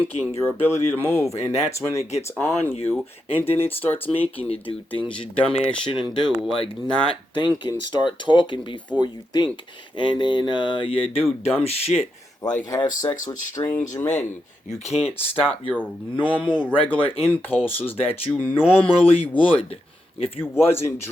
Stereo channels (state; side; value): normal; both; correlation 0.85